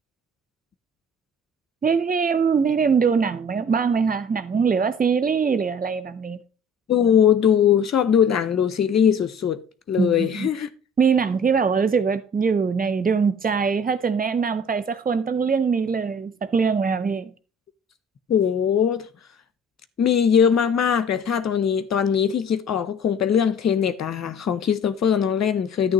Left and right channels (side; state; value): both; normal; correlation 0.48